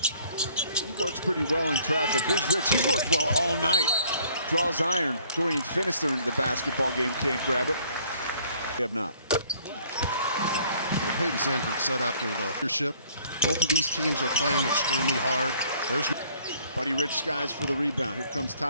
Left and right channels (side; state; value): both; inverted; correlation -0.59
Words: He works pretty well in traffic. Here's Rich. He's worked well all night. Draws iron. Dorian Finister into the basketball game. Can't grab it. They have not. Peyton Sanford said after the leadership, both of these teams are playing extremely hard. There's Buddy Rich skies for the rebound. Here comes